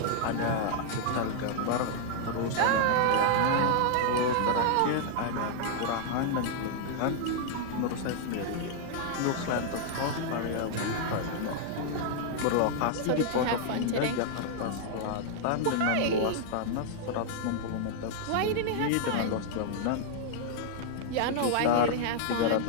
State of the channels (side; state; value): both; different; correlation -0.01